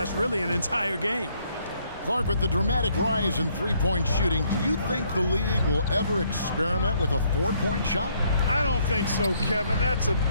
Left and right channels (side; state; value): both; inverted; correlation -0.68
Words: really an entire game. Clark, with the dramatic rise in three-point shooting, do you think the league will ever experiment with a four-point shot? I don't think so, Kevin. That's a